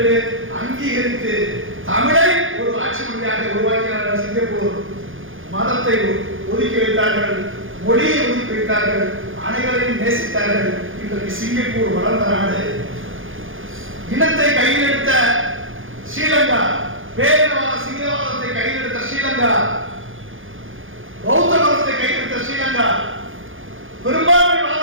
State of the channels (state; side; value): late; left; 0.58 ms